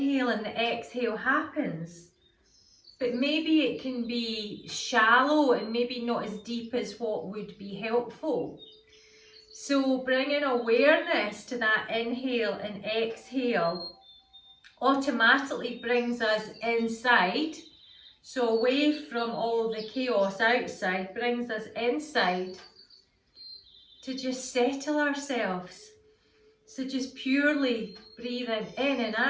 and the exhale happens. But maybe it can be shallow and maybe not as deep as what would be helpful. So bringing awareness to that inhale and exhale automatically brings us inside. So away from all the chaos outside, brings us inside to just settle ourselves. So just purely breathing in and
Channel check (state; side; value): identical; both; correlation 1.00